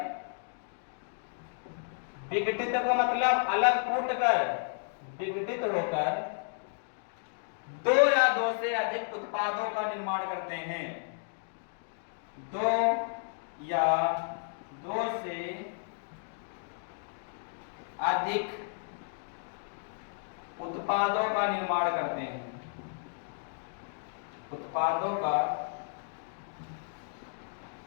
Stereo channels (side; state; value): right; silent; digital silence